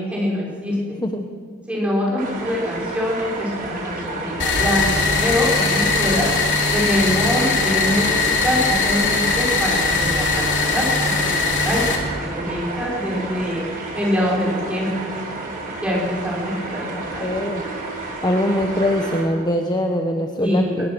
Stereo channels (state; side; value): normal; both; correlation 0.47